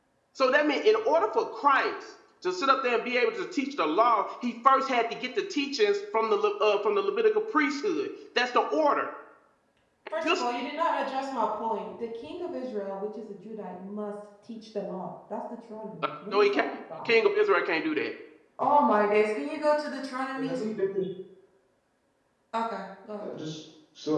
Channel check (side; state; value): both; identical; correlation 1.00